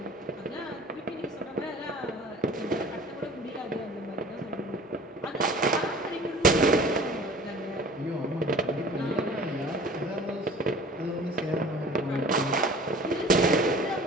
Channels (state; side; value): normal; both; correlation 0.45